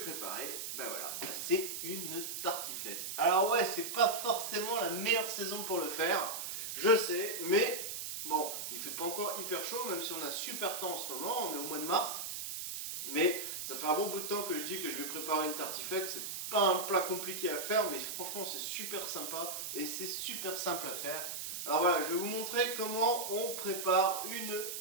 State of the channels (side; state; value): right; noise; hiss, 5 dB below the sound